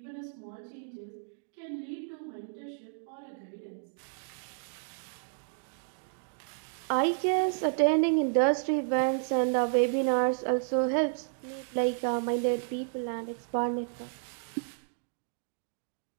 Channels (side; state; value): left; silent; digital silence